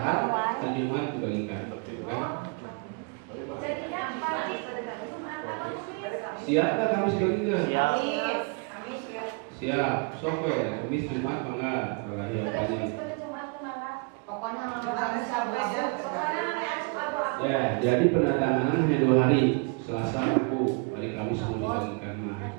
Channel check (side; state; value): left; quieter; 32.6 dB